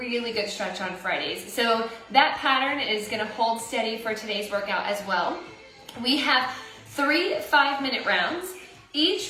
good stretch on Fridays. So that pattern is going to hold steady for today's workout as well. We have 3 5-minute rounds.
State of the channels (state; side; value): identical; both; correlation 1.00